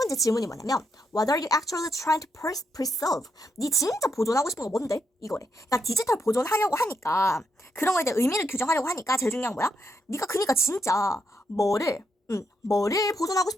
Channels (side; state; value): both; normal; correlation 0.79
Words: 질문이 뭐냐면 What are you actually trying to preserve? 네 진짜 보존하고 싶은 거 뭔데? 이거래. 그러니까 디지털 보존하려고 하니까 그런 거에 대해 의미를 규정하려고 하니까 제일 중요한 거야? 네가 그니까 진짜 뭐를 보존하고